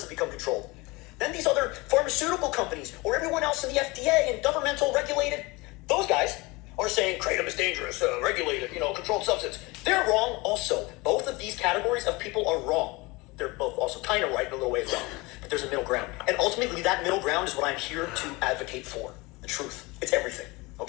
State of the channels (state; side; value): quieter; right; 24.0 dB